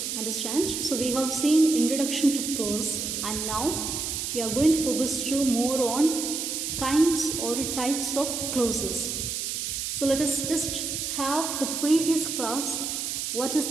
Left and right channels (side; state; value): right; noise; hiss, 3 dB below the sound